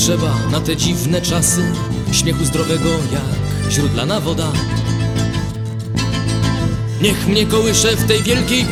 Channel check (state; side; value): identical; both; correlation 1.00